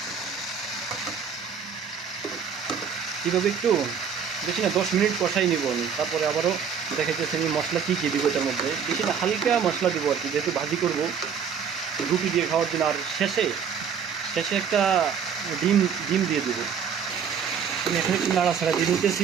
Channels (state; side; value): quieter; left; 7.1 dB